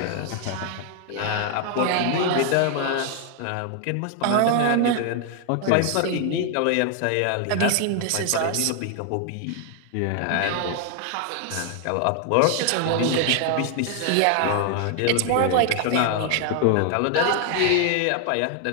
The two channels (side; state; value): both; different; correlation 0.00